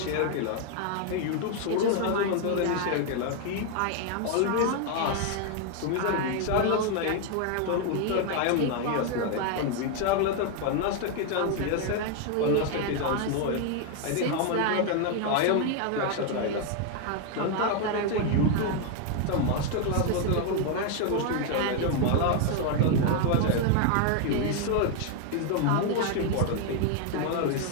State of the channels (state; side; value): different; both; correlation 0.00